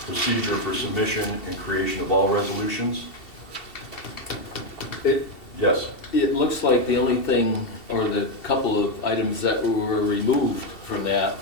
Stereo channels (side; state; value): right; late; 2.7 ms